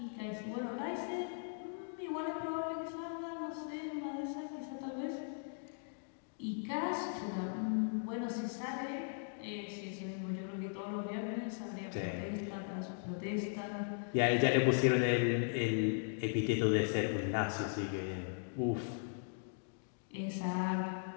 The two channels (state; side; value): silent; right; digital silence